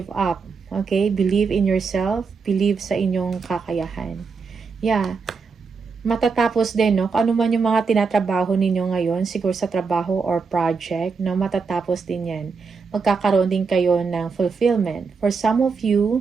up. Okay? Believe in yourself. Believe sa inyong kakayahan. Yeah. Matatapos din, no? Kung ano man yung mga tinatrabaho ninyo ngayon, siguro sa trabaho or project, no? Matatapos din yan. Magkakaroon din kayo ng fulfillment. For some of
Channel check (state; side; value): quieter; left; 5.0 dB